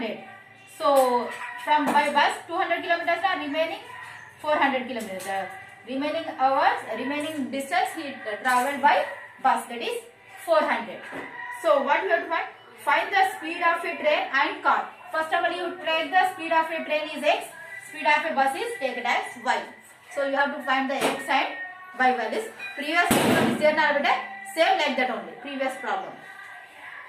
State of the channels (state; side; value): identical; both; correlation 1.00